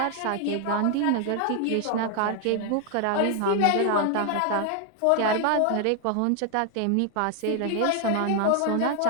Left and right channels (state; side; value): different; both; correlation 0.00